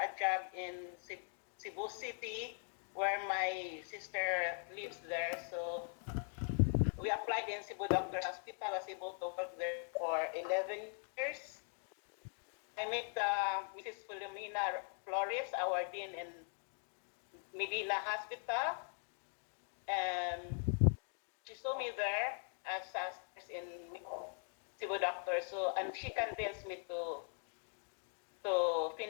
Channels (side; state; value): right; silent; 50 dB below the other